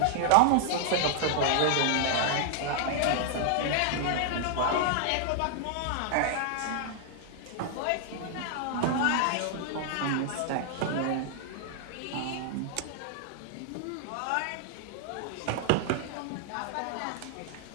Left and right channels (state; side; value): different; both; correlation 0.00